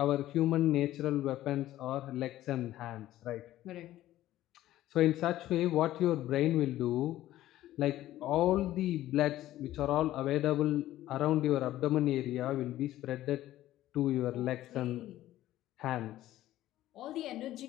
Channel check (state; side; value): quieter; right; 14.4 dB